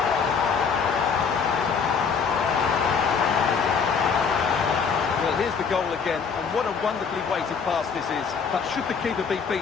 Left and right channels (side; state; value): right; quieter; 6.0 dB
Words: Well, here's the goal again, and what a wonderfully weighted pass this is. But should the keeper be